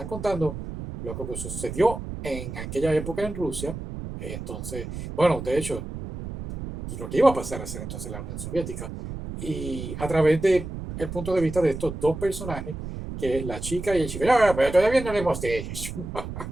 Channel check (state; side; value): noise; right; rumble, 8 dB below the sound